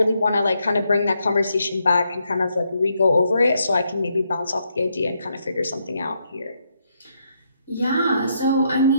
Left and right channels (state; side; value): inverted; both; correlation -0.78